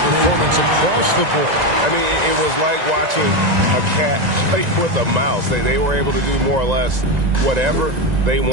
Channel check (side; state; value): left; late; 1.9 ms